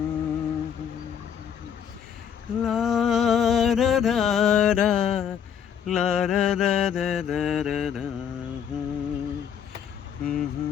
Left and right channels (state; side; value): quieter; right; 8.5 dB